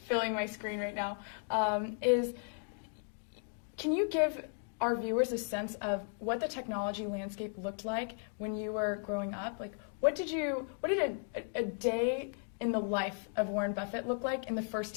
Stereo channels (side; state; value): right; silent; 54 dB below the other